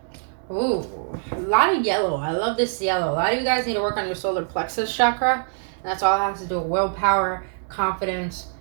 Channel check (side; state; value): left; silent; digital silence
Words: Ooh, a lot of yellow. I love this yellow. A lot of you guys need to work on your solar plexus chakra. And that's all it has to do with willpower, confidence,